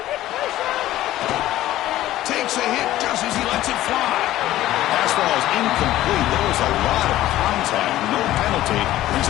Takes a hit just as he lets it fly. Pass ball is incomplete. There was a lot of contact. No penalty. Brings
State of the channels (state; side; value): quieter; right; 14.6 dB